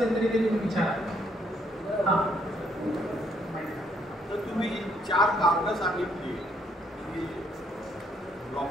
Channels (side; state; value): both; normal; correlation 0.70